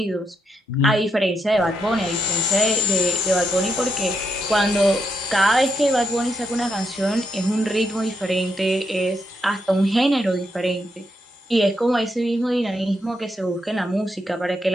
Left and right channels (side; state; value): both; normal; correlation 0.80